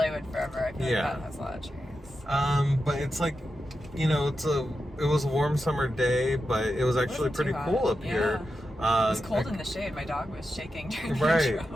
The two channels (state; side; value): normal; both; correlation 0.89